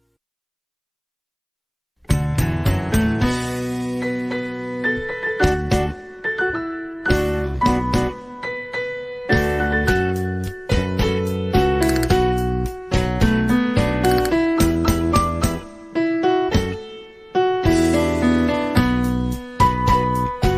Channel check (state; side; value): identical; both; correlation 1.00